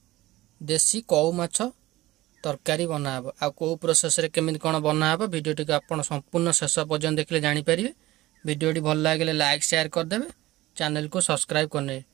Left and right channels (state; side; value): quieter; left; 17.7 dB